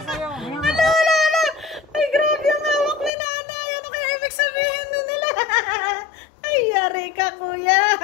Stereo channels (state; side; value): drops out; right; at 3.1 s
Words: Ay, grabe ang hawak ni Nanay. Ano kaya ibig sabihin nun nila? Ay, yari ka, kuya.